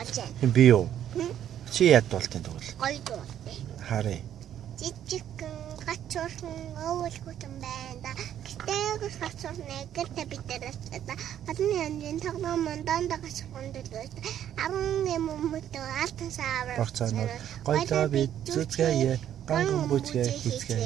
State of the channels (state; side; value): quieter; left; 10.5 dB